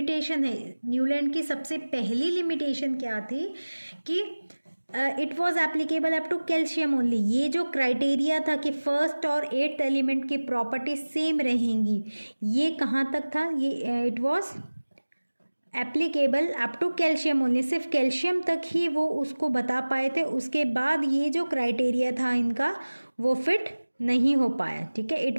है, न्यूलैंड की सबसे पहली लिमिटेशन क्या थी कि it was applicable up to calcium only. ये जो क्राइटेरिया था कि फर्स्ट और 8th एलिमेंट की प्रॉपर्टी सेम रहेंगी, ये कहाँ तक था, ये it was applicable up to calcium only, सिर्फ कैल्शियम तक ही वो उसको बता पाए थे। उसके बाद ये जो क्राइटेरिया था इनका वो फिट नहीं हो पाया। ठीक है,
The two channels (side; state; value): both; inverted; correlation -1.00